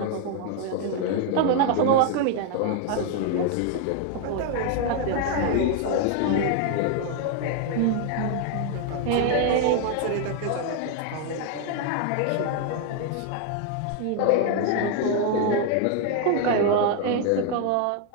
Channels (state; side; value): different; both; correlation 0.00